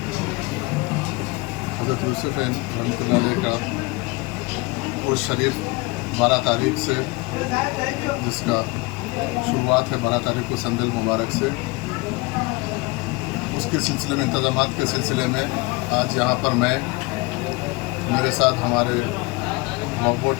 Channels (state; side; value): quieter; right; 24.6 dB